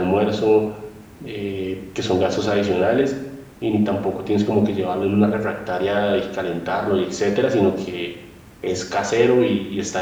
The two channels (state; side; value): identical; both; correlation 1.00